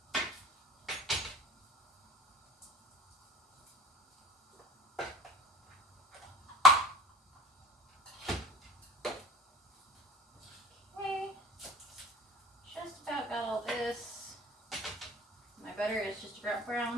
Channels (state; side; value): normal; both; correlation 0.40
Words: Butter is just about